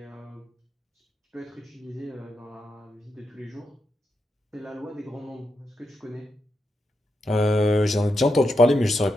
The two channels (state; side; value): normal; both; correlation 0.85